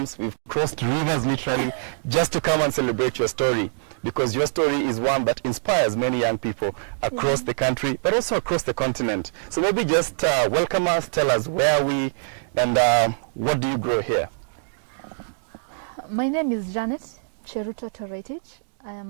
We've crossed rivers, literally, just to come and celebrate your story. Because your story is one that inspires many young people across the country, but also across the continent. So maybe just welcome us, tell us where are we, and what do you grow here? My name is Janet Cheruto Toretich. I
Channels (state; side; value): silent; left; digital silence